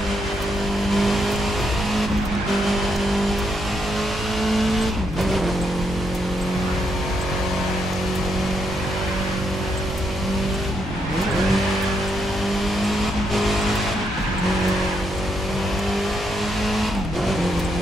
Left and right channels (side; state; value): both; normal; correlation 0.78